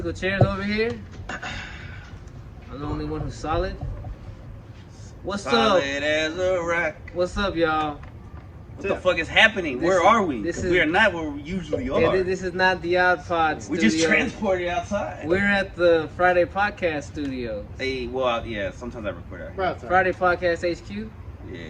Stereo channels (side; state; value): both; identical; correlation 1.00